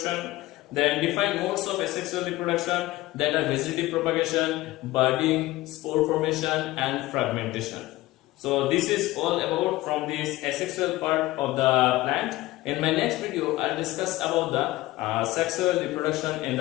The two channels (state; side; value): quieter; right; 17.9 dB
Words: then define modes of asexual reproduction, that are vegetative propagation, budding, spore formation, and fragmentation. So this is all about from this asexual part of the plant. In my next video, I'll discuss about the sexual reproduction in